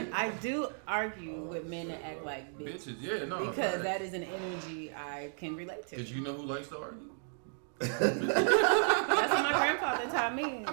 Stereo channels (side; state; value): left; silent; 55 dB below the other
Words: I do argue with men that act like Bitches, yeah, no. because that is an energy I can relate to. Did you know who likes to argue? That's what my grandfather taught me.